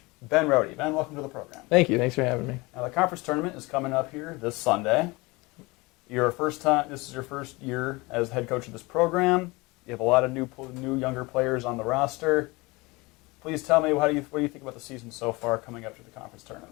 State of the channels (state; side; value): quieter; right; 24.0 dB